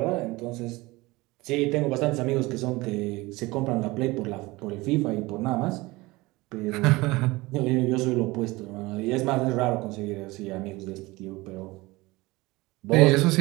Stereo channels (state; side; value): quieter; left; 21.5 dB